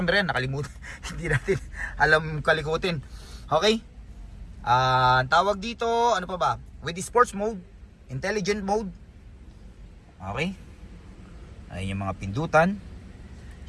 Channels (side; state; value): both; identical; correlation 1.00